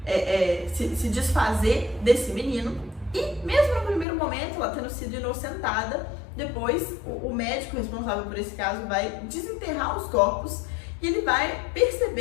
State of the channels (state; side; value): drops out; right; at 4.0 s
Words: se desfazer desse menino. E mesmo no primeiro momento, ela tendo sido inocentada, depois o médico responsável por esse caso vai desenterrar os corpos e ele vai